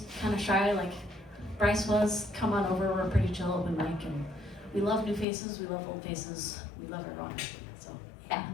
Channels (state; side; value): drops out; right; at 5.2 s